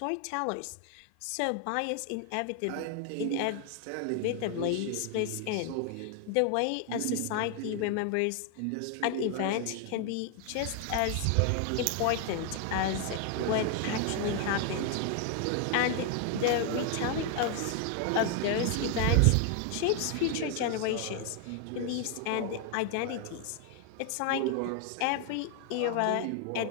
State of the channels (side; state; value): both; different; correlation 0.00